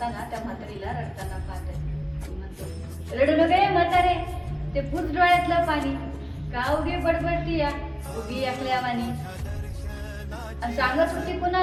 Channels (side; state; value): both; identical; correlation 1.00